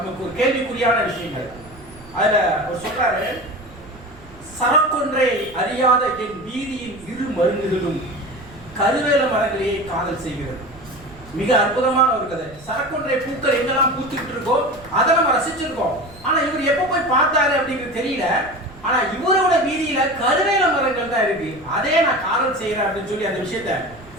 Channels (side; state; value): right; noise; rumble, 21 dB below the sound